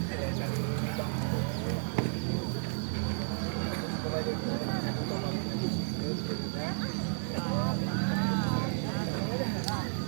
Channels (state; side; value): silent; left; digital silence